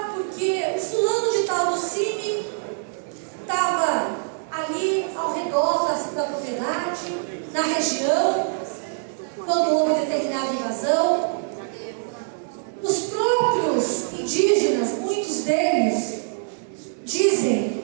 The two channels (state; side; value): silent; left; 63 dB below the other